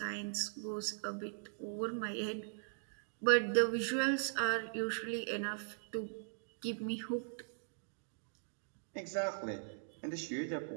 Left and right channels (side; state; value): left; silent; digital silence